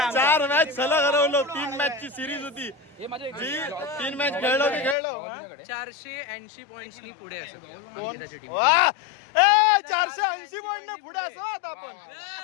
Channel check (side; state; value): right; drops out; at 5.0 s